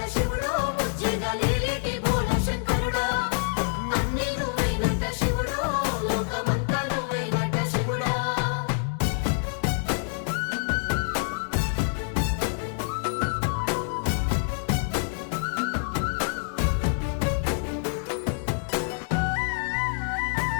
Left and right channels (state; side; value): silent; right; 60 dB below the other